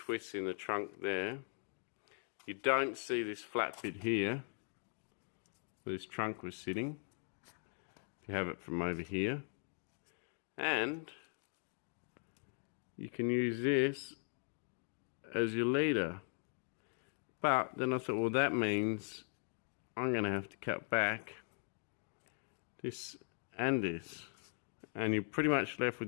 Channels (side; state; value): right; silent; 51 dB below the other